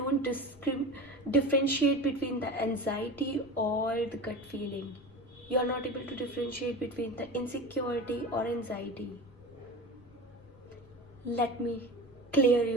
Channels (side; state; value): left; noise; rumble, 24 dB below the sound